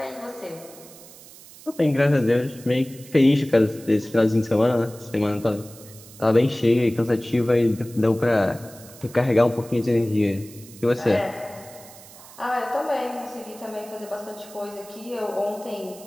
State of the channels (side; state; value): right; noise; hiss, 20 dB below the sound